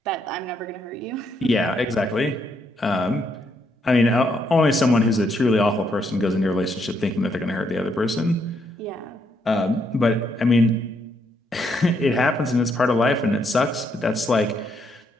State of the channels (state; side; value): normal; both; correlation 0.75